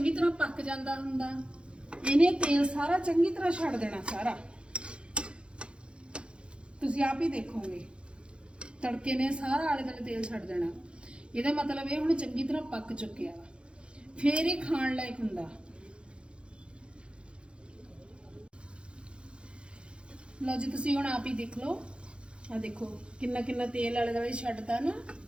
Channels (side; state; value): left; late; 0.056 ms